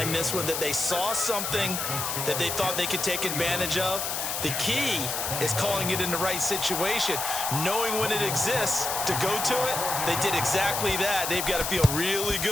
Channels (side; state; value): left; noise; hiss, 2 dB below the sound